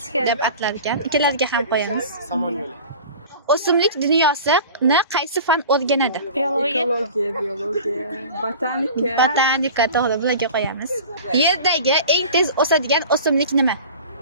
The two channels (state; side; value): inverted; both; correlation -0.39